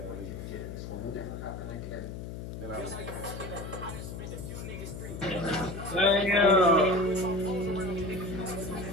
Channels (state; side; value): noise; left; hum, 8 dB below the sound